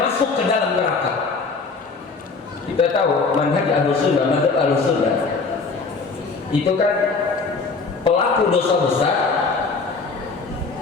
masuk ke dalam neraka. Kita tahu manhaj Ahlussunnah, manhaj Ahlussunnah itu kan pelaku dosa besar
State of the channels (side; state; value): right; quieter; 4.4 dB